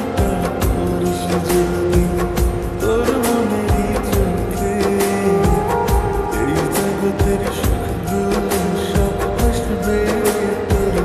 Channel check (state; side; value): identical; both; correlation 1.00